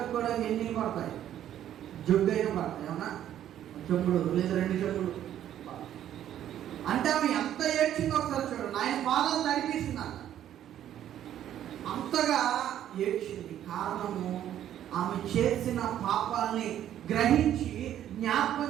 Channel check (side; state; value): left; quieter; 11.2 dB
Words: ఎన్ని పడతాయి? జొగ్గైనా పడతాయి, అవునా? చెంబుడు లేదా 2 చెంబులు. అంటే ఆమె ఎంత ఏడ్చిందో ఒకసారి చూడండి. ఆయన పాదాలు తడిపిస్తుందంట. అంతగా ఏడ్చింది. కారణము, ఆమె చేసిన పాపాలని గ్రహించి జ్ఞాపకం